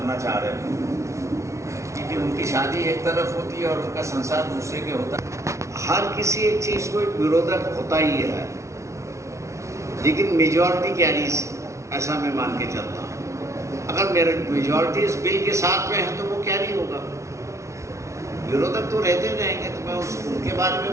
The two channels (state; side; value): late; left; 0.14 ms